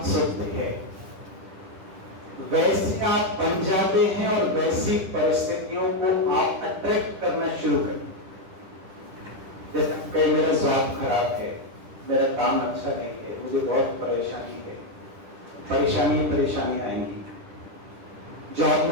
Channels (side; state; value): left; late; 10 ms